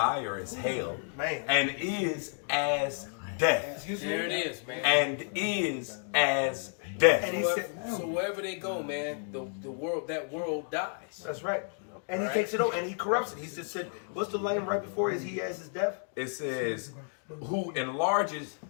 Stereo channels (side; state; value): right; silent; 57 dB below the other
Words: as hell, and is as death." There it is, man. And is as death. And he said, so wherever they go, man, the world dies. That's right. And he takes it over and he corrupts it. He just said, what's the line right before he has his death? It says, who enlarges